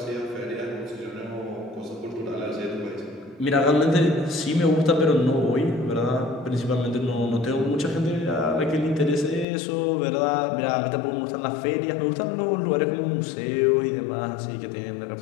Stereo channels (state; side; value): drops out; right; at 9.5 s